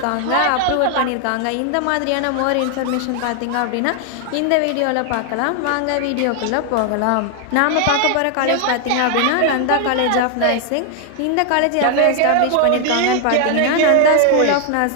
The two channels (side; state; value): both; different; correlation 0.00